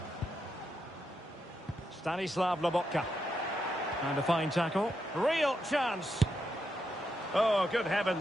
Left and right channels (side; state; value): both; normal; correlation 0.83